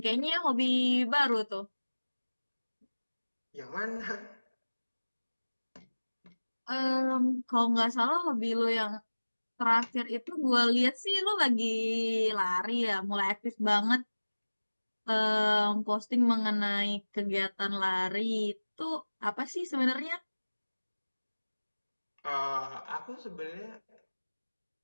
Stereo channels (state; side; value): inverted; both; correlation -1.00